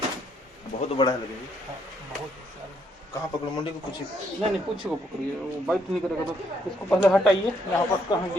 बहुत बड़ा है लगे जी। बहुत कहाँ पकड़ो, मुंडी को पूछिए। नहीं पूछे को पकड़िए, वो बाइट नहीं करेगा तो इसको पहले हटाइए। यहाँ पर कहाँ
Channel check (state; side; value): normal; both; correlation 0.72